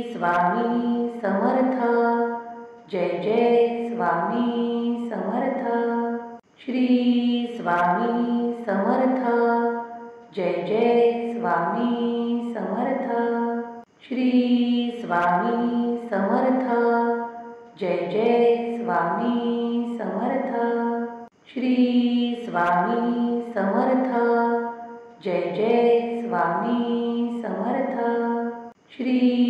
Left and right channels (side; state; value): both; identical; correlation 1.00